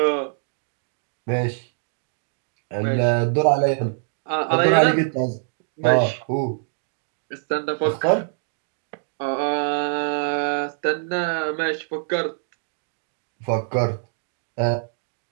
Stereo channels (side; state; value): left; silent; digital silence